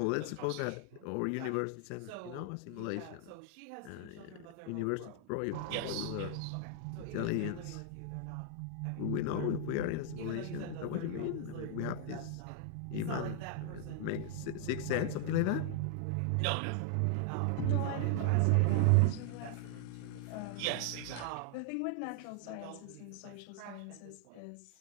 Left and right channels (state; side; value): different; both; correlation 0.00